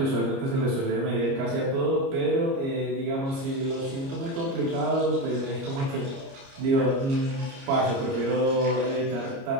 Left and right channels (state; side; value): late; left; 29 ms